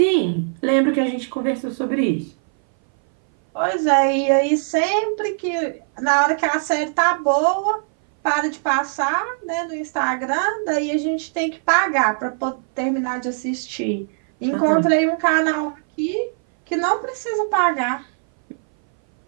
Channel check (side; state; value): left; silent; 60 dB below the other